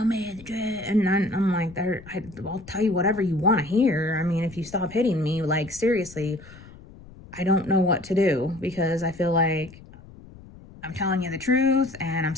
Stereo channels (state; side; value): noise; left; rumble, 20 dB below the sound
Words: me the truth. And I'm like, I'll tell you whatever you want to hear. I mean, if you stop hitting me, like, seriously, I don't know what to do, because I feel like I'm telling you the truth and I'm